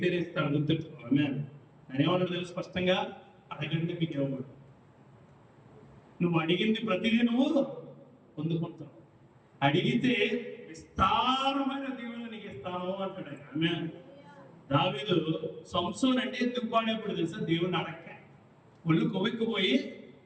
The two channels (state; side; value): identical; both; correlation 1.00